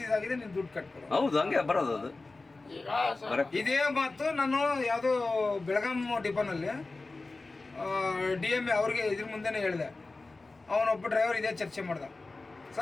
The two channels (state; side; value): quieter; right; 3.4 dB